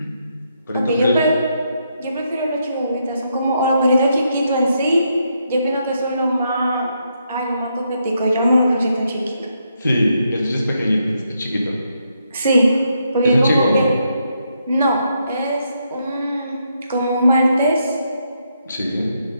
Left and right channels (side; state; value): both; inverted; correlation -0.79